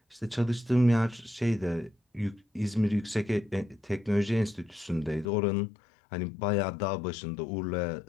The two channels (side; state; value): right; drops out; at 5.2 s